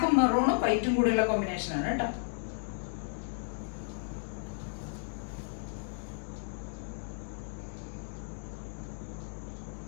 മെറൂണും വൈറ്റും കൂടിയുള്ള കോമ്പിനേഷനാണ് കേട്ടോ.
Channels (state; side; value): silent; right; digital silence